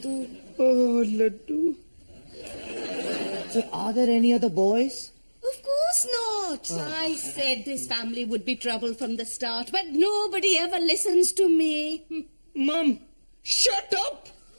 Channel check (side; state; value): both; inverted; correlation -1.00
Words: Oh, Laddu. So are there any other boys? Of course not. I said this family would be trouble from the start, but nobody ever listens to me. Mum, shut up!